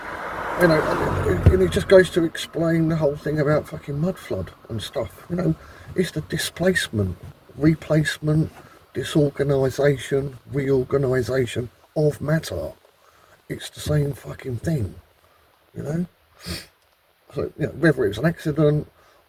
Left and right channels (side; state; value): both; identical; correlation 1.00